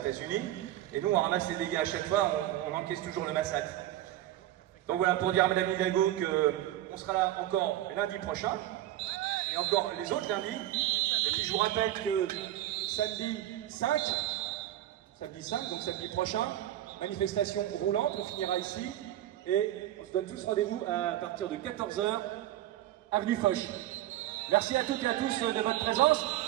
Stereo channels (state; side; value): quieter; left; 13.9 dB